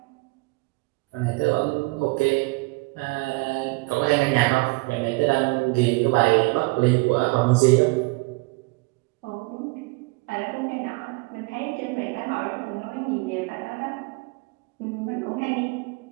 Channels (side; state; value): left; quieter; 25.5 dB